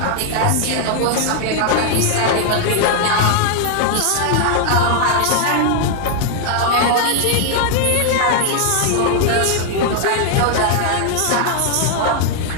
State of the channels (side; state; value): both; different; correlation 0.00